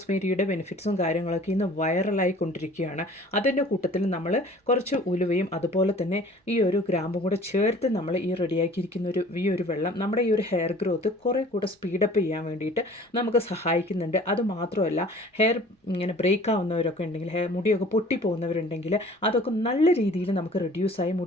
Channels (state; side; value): normal; both; correlation 0.49